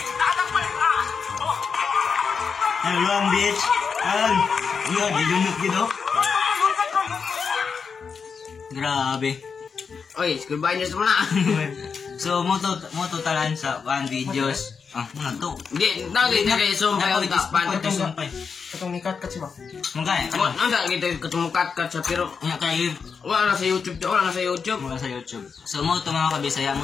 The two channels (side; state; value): right; quieter; 5.8 dB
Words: Tatakpan ka. Ano lang, bitch? Yun, ilunod gito. Grabe. Oy, school binders mo na. So So mo to talan sa one videos. Muna to. Di dali na kay sumpay ang tispan. Katong ni cut siya ba? Mungkay. Ang dali kita katumukat sa pero Nya kay wala na sa YouTube, wala na sa YouTube. mula sa YouTube. So mo to mga kabisaya